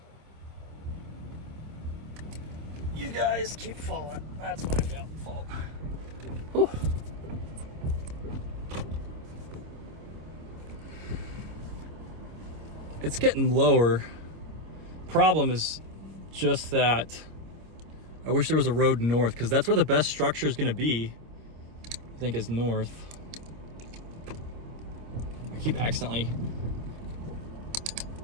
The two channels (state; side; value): late; left; 26 ms